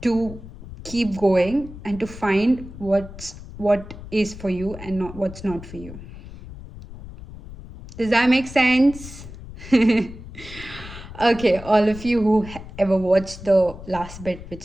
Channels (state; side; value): noise; left; rumble, 14 dB below the sound